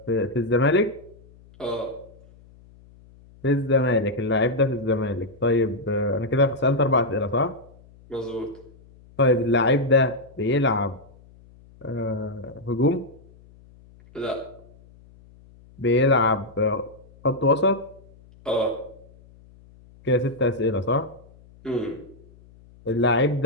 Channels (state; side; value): noise; left; hum, 25 dB below the sound